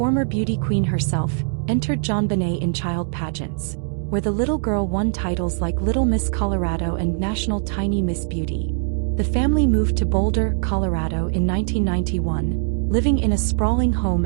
beauty queen herself, entered JonBenét in child pageants, where the little girl won titles like Little Miss Colorado and National Tiny Miss Beauty. The family moved to Boulder, Colorado in 1991, living in a sprawling home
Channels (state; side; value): silent; left; digital silence